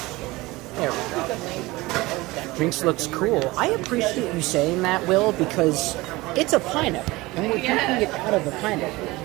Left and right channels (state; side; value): quieter; left; 20.8 dB